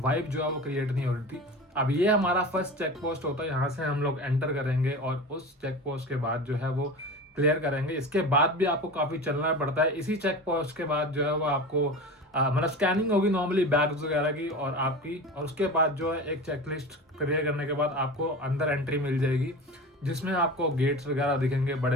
जो है वो क्रिएट नहीं हो रही थी। अब ये हमारा फर्स्ट चेक पोस्ट होता है, यहाँ से हम लोग एंटर करेंगे और उस चेक पोस्ट के बाद जो है वो क्लियर करेंगे। इसके बाद भी आपको काफी चलना पड़ता है। इसी चेक पोस्ट के बाद जो है वो आपको मतलब स्कैनिंग होगी नॉर्मली बैग्स वगैरह की और आपकी, और उसके बाद जो है एक चेकलिस्ट क्लियर करने के बाद आपको अंदर एंट्री मिल जाएगी, जिसमें आपको गेट्स वगैरह दिखेंगे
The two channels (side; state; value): both; normal; correlation 0.31